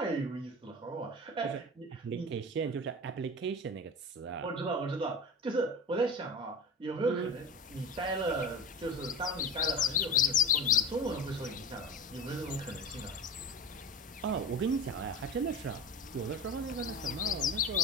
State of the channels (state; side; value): normal; both; correlation 0.32